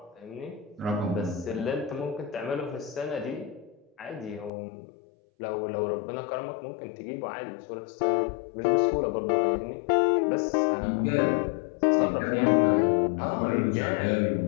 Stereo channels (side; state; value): right; drops out; at 4.5 s